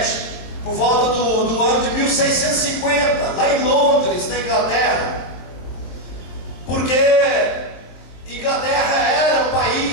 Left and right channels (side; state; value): right; late; 23 ms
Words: por volta do ano de 1650, lá em Londres, na Inglaterra, porque Inglaterra era um